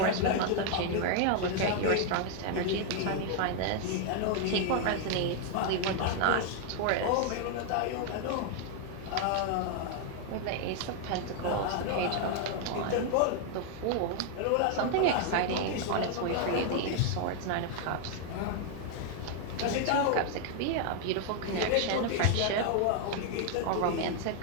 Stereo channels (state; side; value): different; both; correlation 0.00